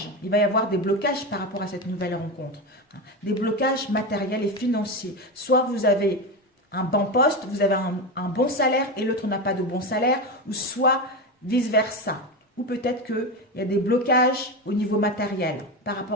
Il va y avoir des blocages par rapport à cette nouvelle rencontre. Des blocages matériels et financiers. Soit vous avez un bon poste, vous avez un bon salaire et l'autre n'a pas de bon salaire, ou soit vice-versa. Ou peut-être qu'il y a des blocages au niveau matériel par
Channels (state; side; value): normal; both; correlation 0.18